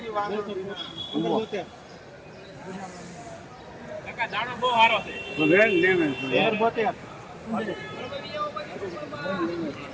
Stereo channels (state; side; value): identical; both; correlation 1.00